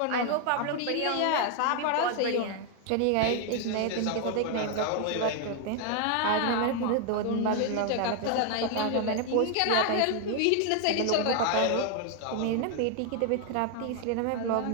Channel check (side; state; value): both; different; correlation 0.00